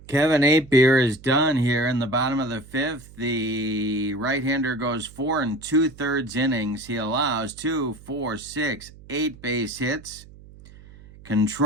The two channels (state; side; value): noise; right; hum, 20 dB below the sound